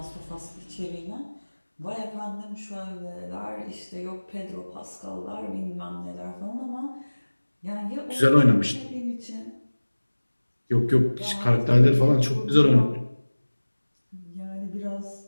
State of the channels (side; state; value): both; inverted; correlation -1.00